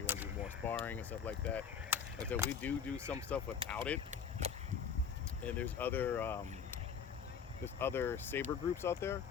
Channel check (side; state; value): right; quieter; 6.9 dB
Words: want to do more sparring and stuff like that. And so we do some stuff without it. And there's other saber groups out there.